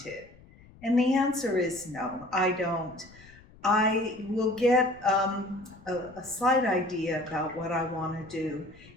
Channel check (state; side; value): noise; left; rumble, 24 dB below the sound